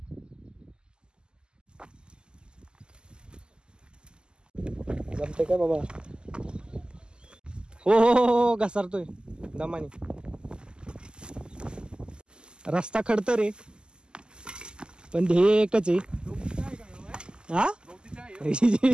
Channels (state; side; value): late; left; 0.047 ms